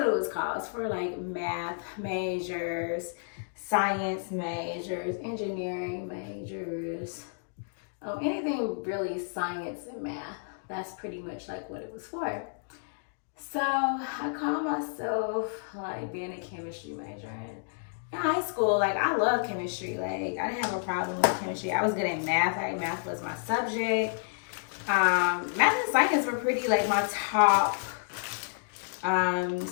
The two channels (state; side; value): silent; right; digital silence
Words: it was called. It's for math majors, science majors, engineering majors, anything really science and math. That's pretty much what it was for. So I call myself being a chemistry major. And in high school, I love chemistry. I didn't have a problem with chemistry. I was good at math. Math was my subject. Math and science were pretty my top